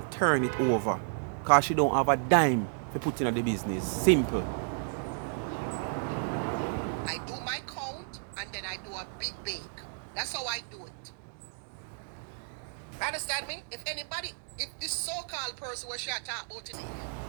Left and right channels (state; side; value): silent; left; digital silence